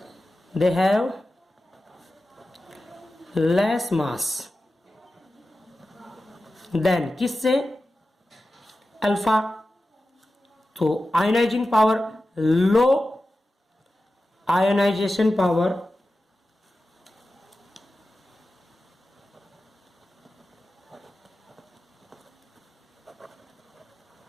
they have less mass than किससे, अल्फा, तो ionizing power, low ionization power,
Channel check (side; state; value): both; normal; correlation 0.93